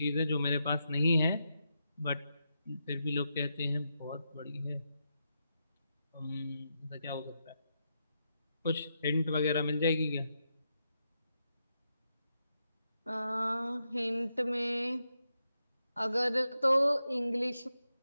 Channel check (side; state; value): both; inverted; correlation -0.85